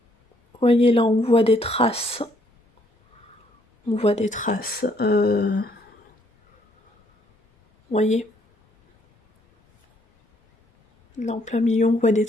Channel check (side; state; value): both; normal; correlation 0.68